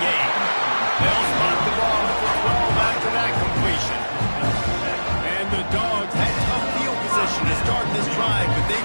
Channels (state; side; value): inverted; both; correlation -1.00